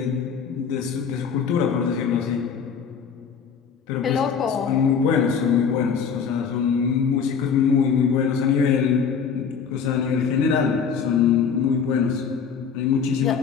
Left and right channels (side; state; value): right; quieter; 6.6 dB